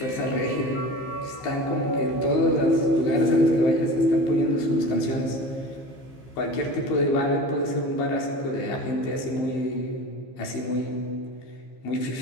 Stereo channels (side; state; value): right; late; 15 ms